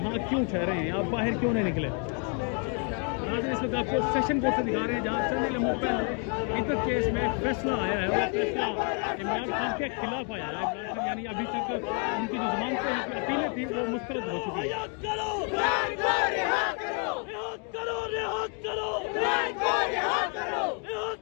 क्यों ठहरे हैं, आप बाहर क्यों नहीं निकले। इस वक्त आपको सेशन कोर्ट से दिखा रहे हैं जहाँ चंद लम्हों पहले इधर केस में फैसला आया है। वो फैसला इमरान खान के खिलाफ आया है। इमरान खान यानी अभी तक उनकी जो जमानत की अपीलें थी वो मुस्तरद हो चुकी है।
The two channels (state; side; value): quieter; right; 39.9 dB